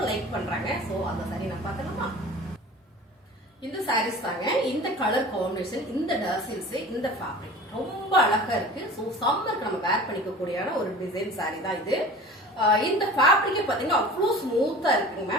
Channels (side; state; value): both; normal; correlation 0.40